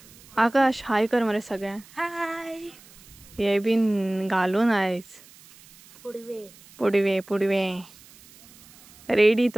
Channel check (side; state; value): right; noise; hiss, 24 dB below the sound